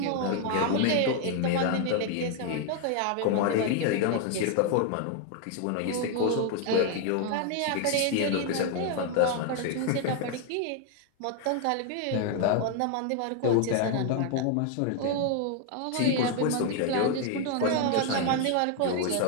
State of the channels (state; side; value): different; both; correlation 0.00